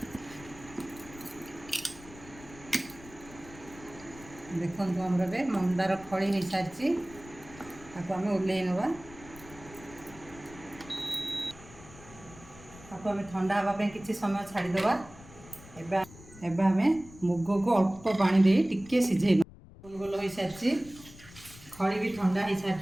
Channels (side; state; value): left; noise; rumble, 19 dB below the sound